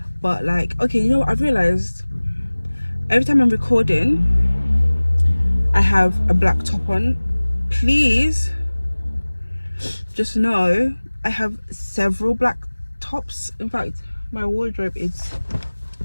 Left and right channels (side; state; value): both; inverted; correlation -1.00